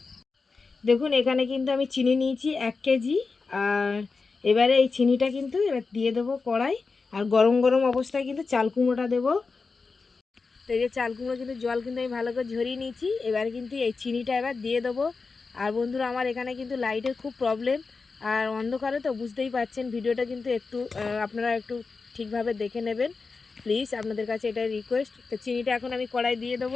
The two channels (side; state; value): right; quieter; 4.4 dB